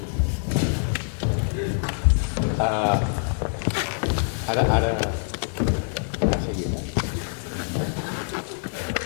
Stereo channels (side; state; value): right; silent; 61 dB below the other